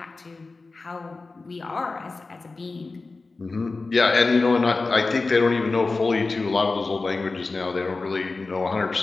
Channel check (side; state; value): right; quieter; 3.7 dB